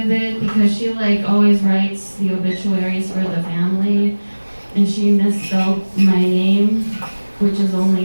it because she like always writes the obituaries for the family, and she misspelled my name, which is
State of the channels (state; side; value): inverted; both; correlation -1.00